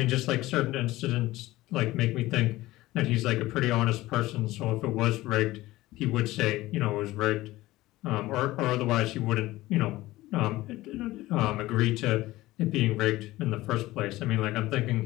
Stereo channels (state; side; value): quieter; right; 17.7 dB